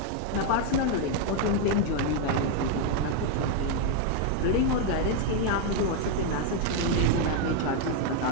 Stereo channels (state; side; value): different; both; correlation 0.00